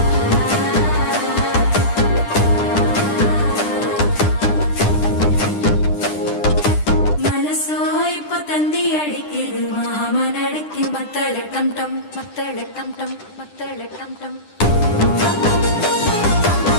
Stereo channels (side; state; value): right; late; 9.9 ms